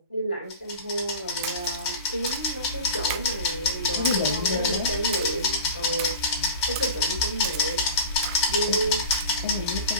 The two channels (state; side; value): inverted; both; correlation -0.34